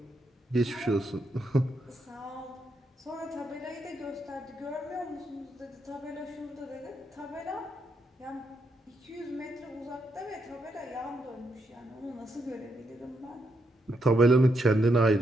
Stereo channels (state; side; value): normal; both; correlation 0.80